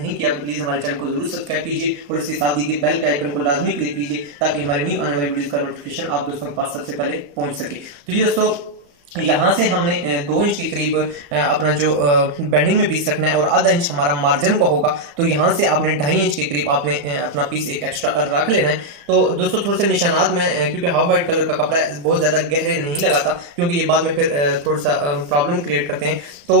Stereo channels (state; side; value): late; left; 35 ms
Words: किया तो प्लीज हमारे चैनल को जरूर सब्सक्राइब कीजिए और इसके साथ दी गई बेल के आइकन को लाजमी क्लिक कीजिए ताकि हमारी न्यू आने वाली वीडियोस का नोटिफिकेशन आप दोस्तों के पास सबसे पहले पहुंच सके। तो ये दोस्तों यहाँ से हमने 2 इंच के करीब अपना जो बेंडिंग में पीस रखना है और आधा इंच हमारा मार्जिन का होगा। तो यहाँ से आपने 2.5 इंच के करीब आपने अपना पीस एक एक्स्ट्रा रख लेना है। तो दोस्तों थोड़े से निशानात में क्योंकि हाफ वाइट कलर का कपड़ा है बहुत ज़्यादा गहरे नहीं लगाता क्योंकि ये बाद में फिर थोड़ा सा प्रॉब्लम क्रिएट करते हैं। तो